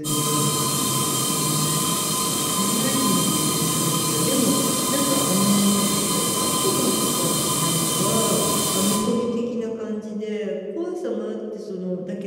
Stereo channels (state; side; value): identical; both; correlation 1.00